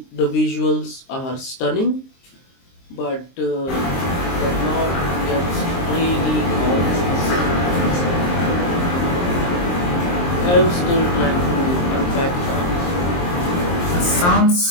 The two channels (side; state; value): right; late; 23 ms